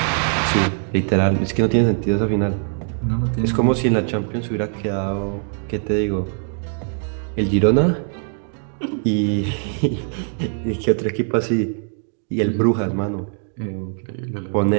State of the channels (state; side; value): silent; left; 57 dB below the other